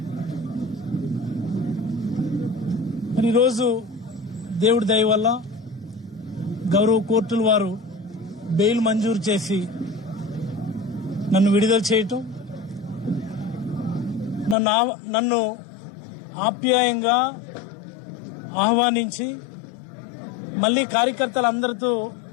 మరి ఈరోజు దేవుడి దయ వల్ల గౌరవ కోర్టుల వారు బెయిల్ మంజూరు చేసి నన్ను విడుదల చేయటం, నన్ను ఆప్యాయంగా ఆహ్వానించి మళ్ళీ కార్యకర్తలందరితో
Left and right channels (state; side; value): drops out; right; at 14.6 s